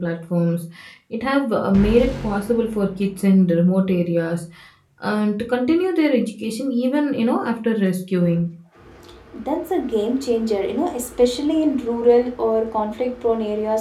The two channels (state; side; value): identical; both; correlation 1.00